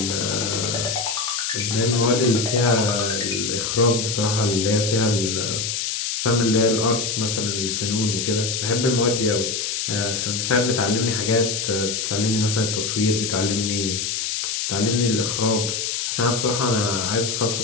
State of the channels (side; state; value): left; noise; hiss, 1 dB below the sound